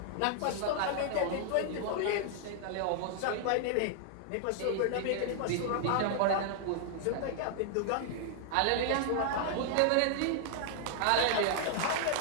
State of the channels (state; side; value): different; both; correlation -0.01